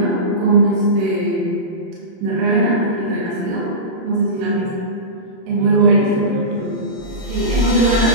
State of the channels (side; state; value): left; late; 26 ms